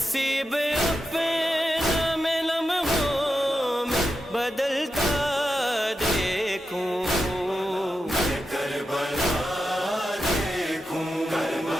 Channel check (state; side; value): normal; both; correlation 0.89